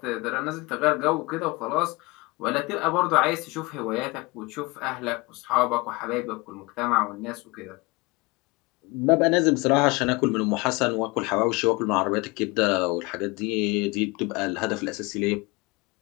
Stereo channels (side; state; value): right; quieter; 25.0 dB